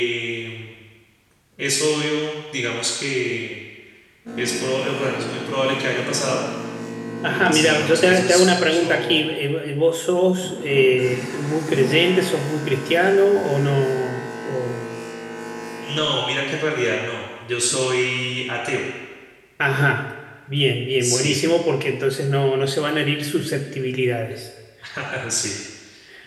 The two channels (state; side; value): identical; both; correlation 1.00